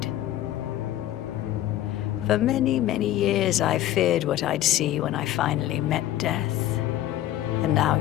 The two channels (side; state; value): right; quieter; 13.5 dB